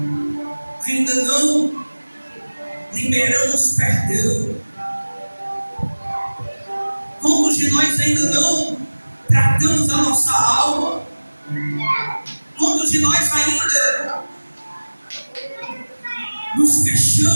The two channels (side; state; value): both; inverted; correlation -1.00